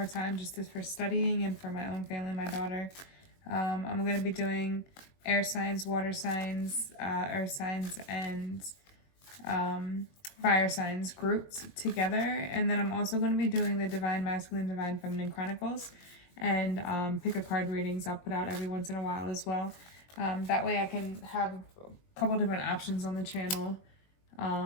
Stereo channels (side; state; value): right; late; 21 ms